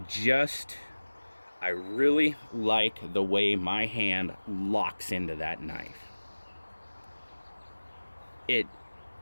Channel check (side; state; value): both; inverted; correlation -1.00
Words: I really like the way my hand locks into that knife.